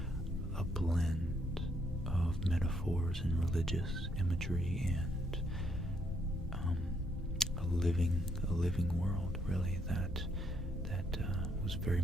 a blend of metaphors and religious imagery and a living world, really, that was very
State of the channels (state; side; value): normal; both; correlation 0.73